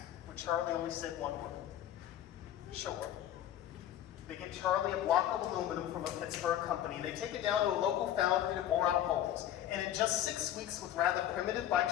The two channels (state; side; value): quieter; right; 11.7 dB